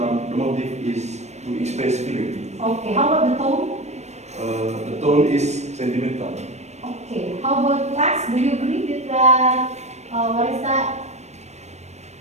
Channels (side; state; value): left; late; 0.32 ms